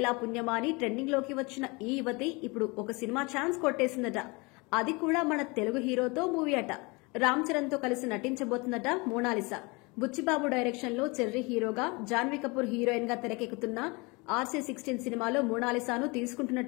పుణ్యమాని ట్రెండింగ్ లోకి వచ్చిన ఈ యువతి ఇప్పుడు ఒక సినిమా ఛాన్స్ కొట్టేసిందట. అది కూడా మన తెలుగు హీరోతో మూవీ అట. రామ్ చరణ్ తో కలిసి నటించబోతుందట మోనాలిసా. బుచ్చిబాబు డైరెక్షన్ లో చెర్రీ హీరోగా, జాన్వీ కపూర్ హీరోయిన్ గా తెరకెక్కుతున్న RC16 సినిమాలో మోనాలిసాను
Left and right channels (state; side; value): quieter; right; 27.1 dB